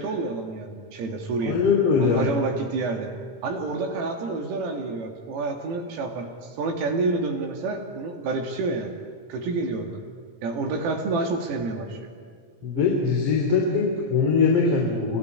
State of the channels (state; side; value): late; left; 18 ms